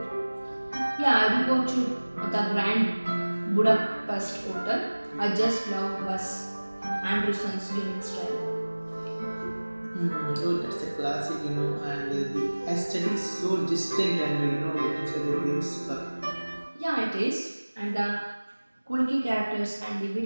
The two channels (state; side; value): inverted; both; correlation -1.00